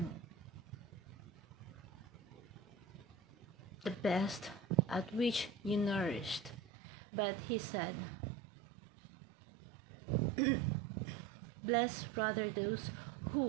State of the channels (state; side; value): drops out; left; at 6.6 s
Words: the best at which you nourished." But he said, "Blessed rather those